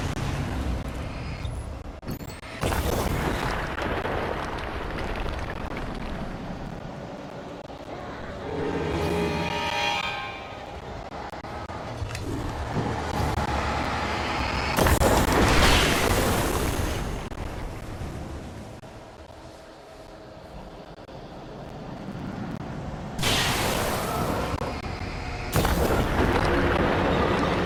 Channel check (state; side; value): identical; both; correlation 1.00